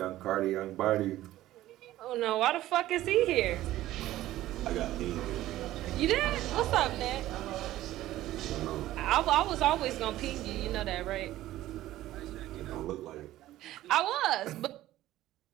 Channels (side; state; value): left; quieter; 14.9 dB